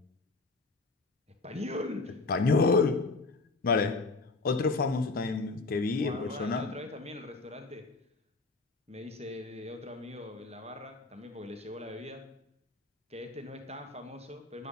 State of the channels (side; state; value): right; quieter; 3.5 dB